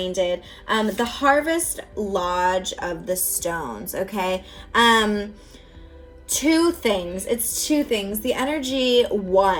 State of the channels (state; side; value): identical; both; correlation 1.00